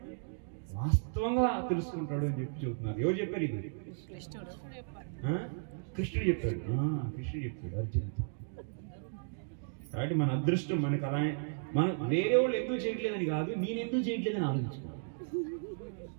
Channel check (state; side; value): silent; left; digital silence